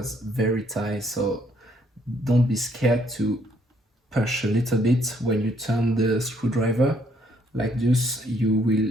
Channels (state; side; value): normal; both; correlation 0.68